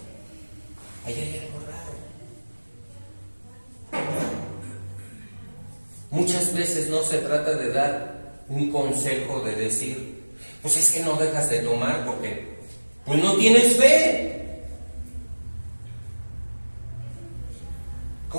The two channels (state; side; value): inverted; both; correlation -1.00